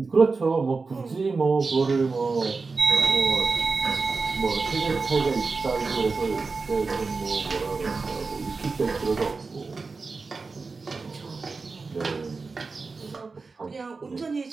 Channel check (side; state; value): left; quieter; 4.2 dB